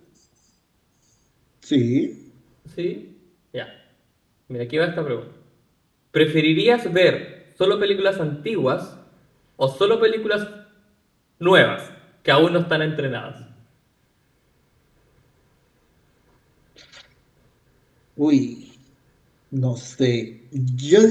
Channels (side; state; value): both; identical; correlation 1.00